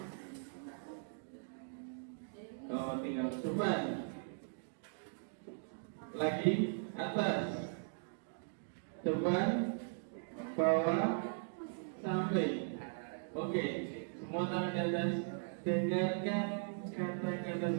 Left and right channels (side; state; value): left; silent; digital silence